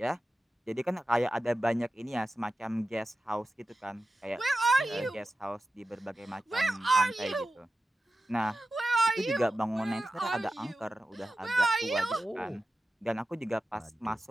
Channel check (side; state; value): both; normal; correlation 0.93